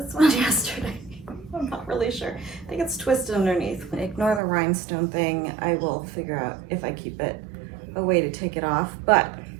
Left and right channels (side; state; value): left; drops out; at 4.4 s